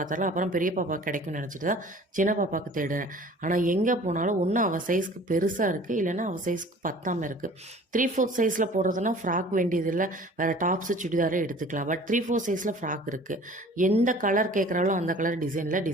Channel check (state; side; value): normal; both; correlation 0.47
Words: அப்புறம் பெரிய பாப்பாவுக்கு கிடைக்கும்னு நினச்சிட்டு தான் சின்ன பாப்பாவுக்கு தேடுறேன். ஆனால் எங்கே போனாலும் ஒன்று அவள் சைஸ்க்கு பெருசாக இருக்குது, இல்லைன்னா அவள் சைஸ்க்கு பத்தாமல் இருக்குது. 3/4 சைஸில் போடுறதுனா ஃப்ராக் வேண்டியதில்லை, வேறு டாப்ஸு சுடிதாரே எடுத்துக்கலாம். பட் 3/4 சைஸில் ஃப்ராக் இருக்குது. எந்த கலர் கேட்குறாலும் அந்த கலர் டிசைனில்,